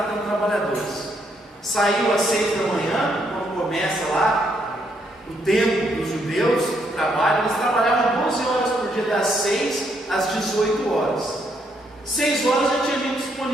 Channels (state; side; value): normal; both; correlation 0.74